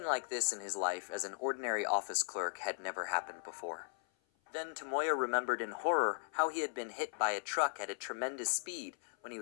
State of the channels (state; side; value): silent; right; 53 dB below the other